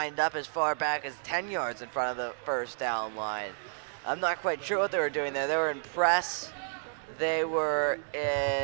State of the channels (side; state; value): left; silent; digital silence